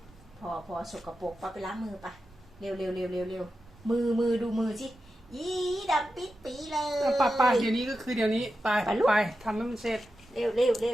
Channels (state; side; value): normal; both; correlation 0.91